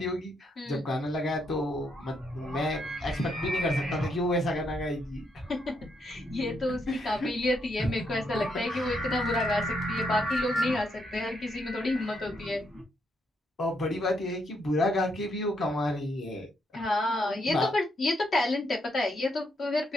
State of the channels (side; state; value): both; normal; correlation 0.77